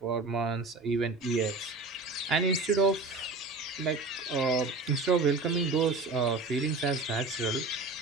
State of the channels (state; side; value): quieter; left; 3.5 dB